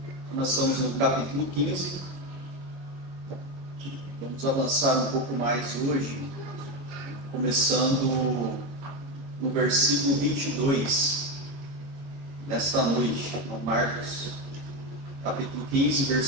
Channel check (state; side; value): late; left; 22 ms